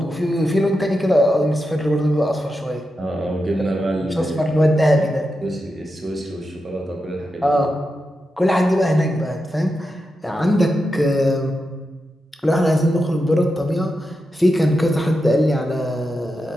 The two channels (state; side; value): normal; both; correlation 0.88